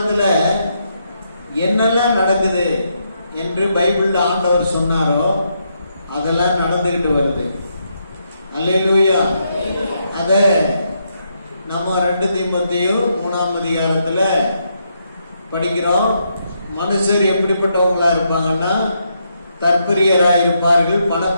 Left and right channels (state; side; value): inverted; both; correlation -0.79